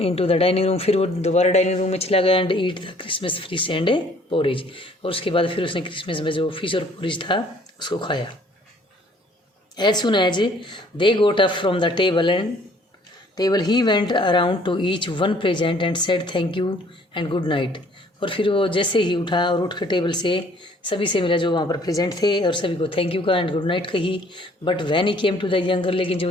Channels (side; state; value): both; normal; correlation 0.58